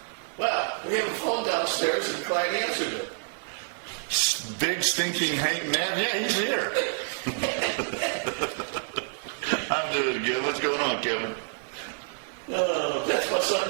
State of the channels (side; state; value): left; silent; digital silence